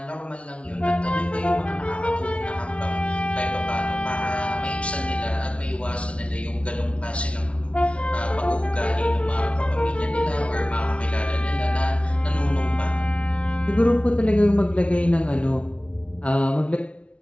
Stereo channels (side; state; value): right; late; 0.061 ms